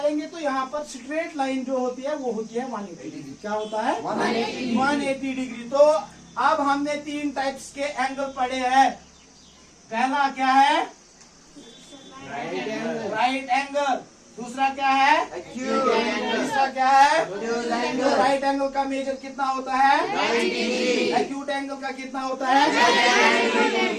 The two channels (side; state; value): both; identical; correlation 1.00